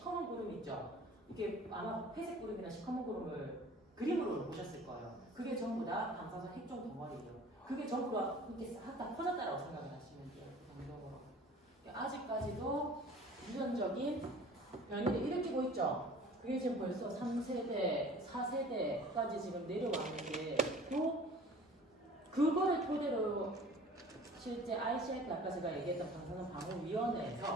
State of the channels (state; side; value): normal; both; correlation 0.46